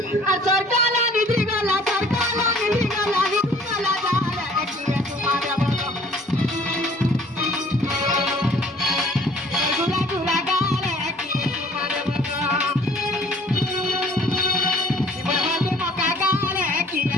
আর সরকার নিদ্রি গলা জালে কি চুমা দেব গো গুলা গুলা গালে কি চুমা দেব গো এবার হাতে মকা গালে কি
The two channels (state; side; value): normal; both; correlation 0.54